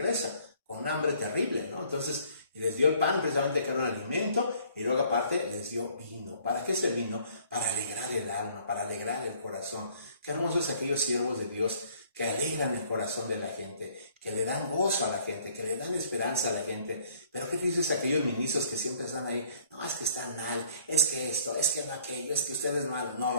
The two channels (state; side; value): inverted; both; correlation -0.60